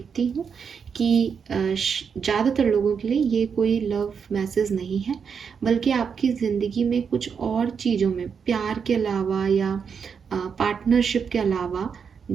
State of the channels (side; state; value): left; quieter; 6.5 dB